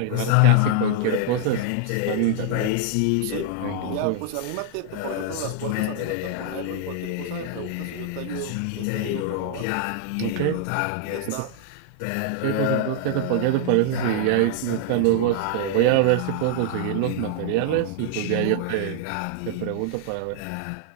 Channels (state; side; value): different; both; correlation 0.00